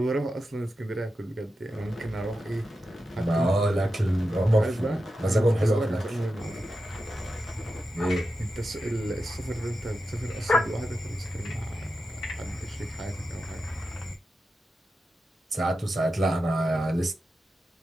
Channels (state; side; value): normal; both; correlation 0.90